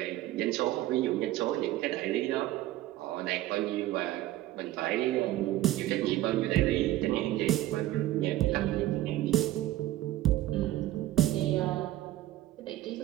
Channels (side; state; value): left; quieter; 15.2 dB